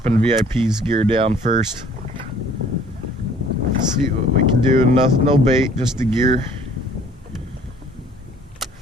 VIP's gear down first. See what we can do. No bait, just the gear.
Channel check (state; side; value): normal; both; correlation 0.55